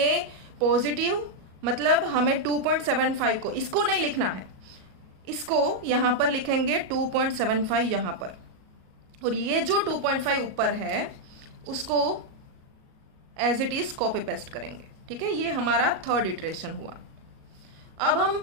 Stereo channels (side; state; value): left; late; 38 ms